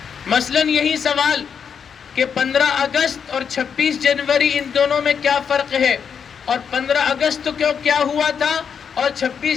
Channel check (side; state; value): right; quieter; 7.0 dB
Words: مثلاً یہی سوال کہ 15 اگست اور 26 جنوری ان دونوں میں کیا فرق ہے، اور 15 اگست کو کیا ہوا تھا اور